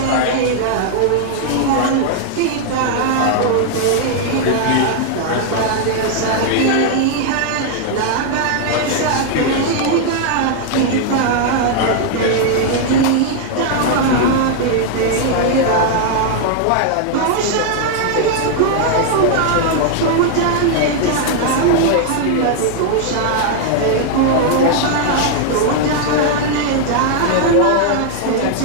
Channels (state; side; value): different; both; correlation 0.00